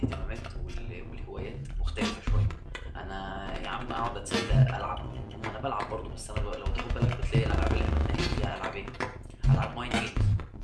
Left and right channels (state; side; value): identical; both; correlation 1.00